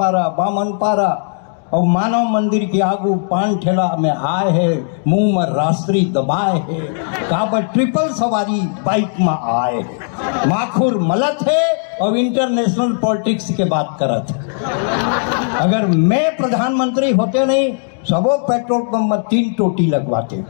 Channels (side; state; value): right; silent; digital silence